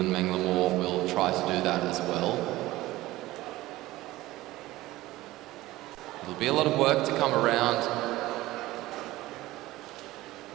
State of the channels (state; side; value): quieter; left; 17.5 dB